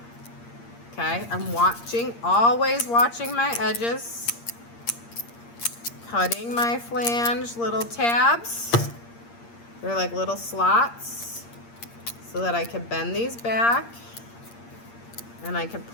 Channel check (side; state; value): right; late; 8.6 ms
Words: Okay, I'm watching, always watching my edges. Cutting my flange little tabs. They're like little slots so that I can bend these back and I can